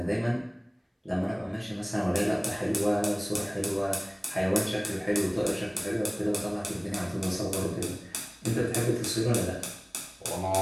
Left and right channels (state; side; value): identical; both; correlation 1.00